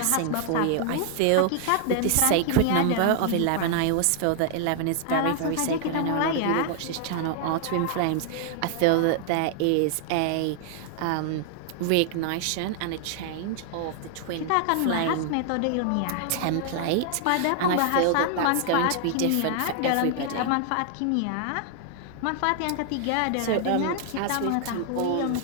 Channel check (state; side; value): different; both; correlation 0.00